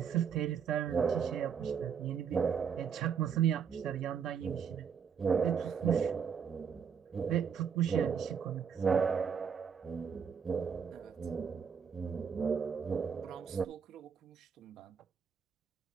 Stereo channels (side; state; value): left; quieter; 7.0 dB